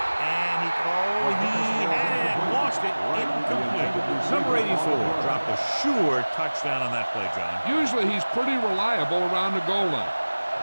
he had it. Lost it. Incomplete. Number 84 dropped a sure touchdown on that play, John. Usually he's pretty reliable around the goal line.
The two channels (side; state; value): both; inverted; correlation -1.00